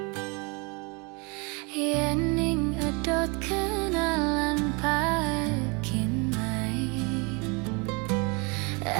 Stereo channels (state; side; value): quieter; left; 30.7 dB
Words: Yening edot kenalan pakin mai,